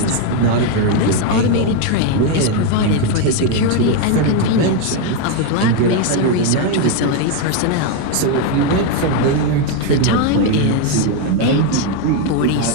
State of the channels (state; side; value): different; both; correlation 0.02